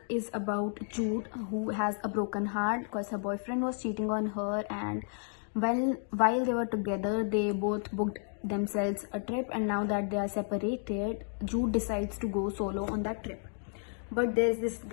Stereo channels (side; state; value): right; silent; 56 dB below the other